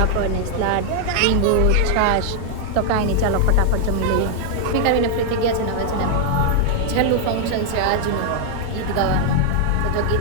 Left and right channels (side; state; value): both; different; correlation 0.00